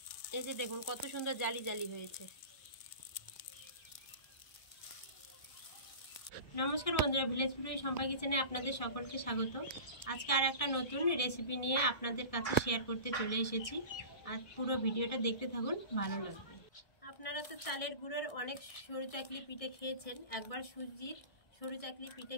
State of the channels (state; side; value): late; right; 1.6 ms